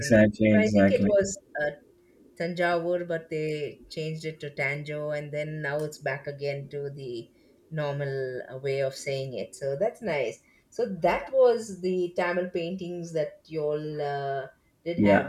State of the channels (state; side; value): identical; both; correlation 1.00